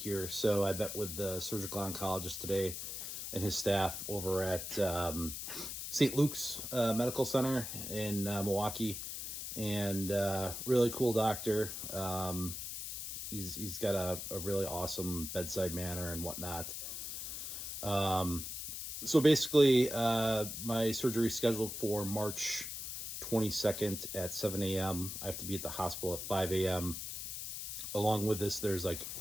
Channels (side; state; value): left; noise; hiss, 6 dB below the sound